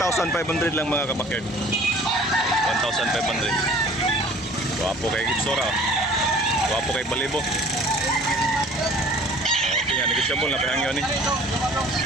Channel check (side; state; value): both; normal; correlation 0.49